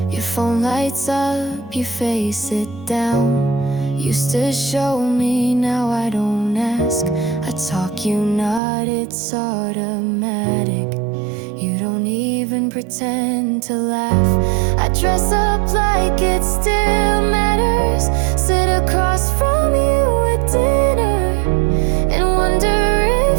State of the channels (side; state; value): left; drops out; at 8.6 s